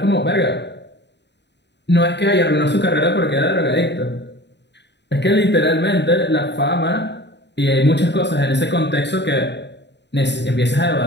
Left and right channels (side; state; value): right; late; 0.50 ms